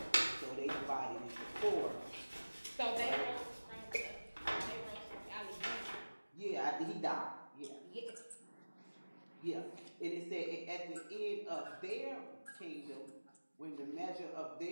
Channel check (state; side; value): inverted; both; correlation -1.00